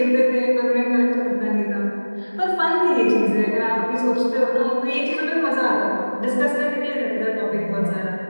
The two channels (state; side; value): inverted; both; correlation -1.00